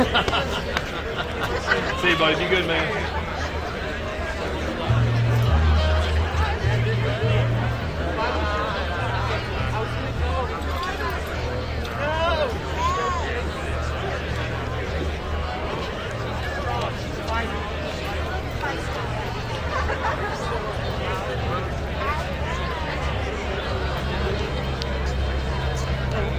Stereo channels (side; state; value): both; identical; correlation 1.00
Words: See you, buddy. Be good, man.